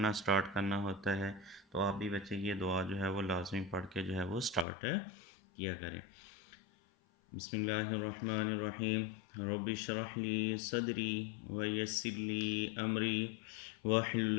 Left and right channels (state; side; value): drops out; right; at 4.7 s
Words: स्टार्ट करना होता है तो आप भी बच्चे ये दुआ जो है वो लाजमी पढ़ के जो है वो स्टार्ट किया करें। बिस्मिल्लाहिर्रहमानिर्रहीम। रब्बि इश्रह ली सदरी व यस्सिर ली अमरी वहलुल